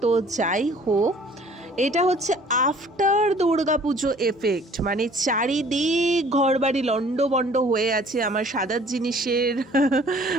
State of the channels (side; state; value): both; normal; correlation 0.54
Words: তো যাই হোক, এটা হচ্ছে আফটার দুর্গাপুজো এফেক্ট, মানে চারিদিক ঘরবাড়ি লন্ডভন্ড হয়ে আছে। আমার সাদার জিনিসের